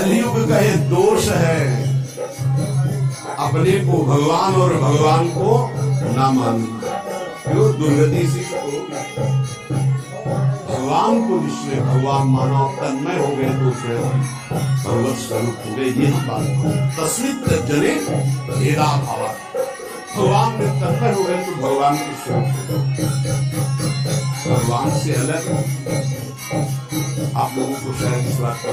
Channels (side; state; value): both; identical; correlation 1.00